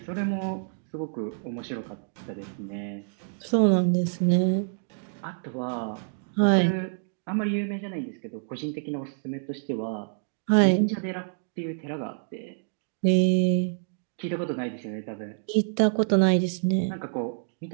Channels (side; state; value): left; silent; digital silence